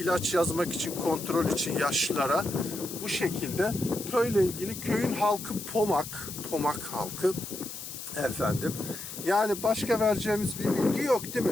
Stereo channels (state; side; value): noise; left; hiss, 10 dB below the sound